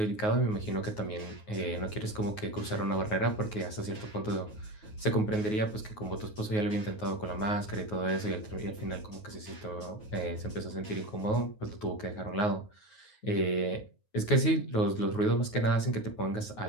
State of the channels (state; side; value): late; right; 9.4 ms